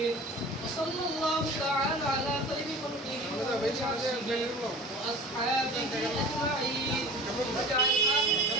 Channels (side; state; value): both; normal; correlation 0.41